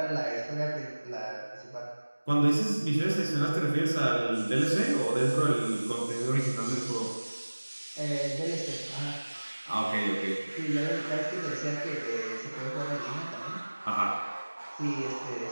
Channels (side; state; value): both; inverted; correlation -1.00